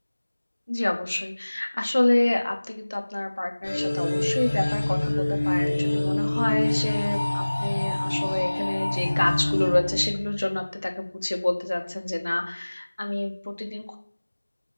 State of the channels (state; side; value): inverted; both; correlation -1.00